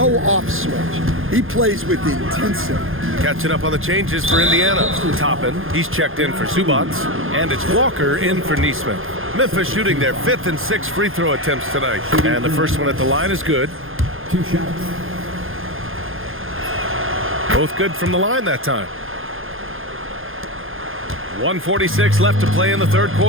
off switch. He plays with intensity. Catching up on the changes for Indiana. Toppin, he's checked in for Zubats, and it's Walker in for Nesmith. Memphis shooting their 5th and 6th free throw attempts tonight. And the first one at the line is good. 2 shots. Both good from the line that time. 1:46 left to play in the 3rd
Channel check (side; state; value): left; late; 0.60 ms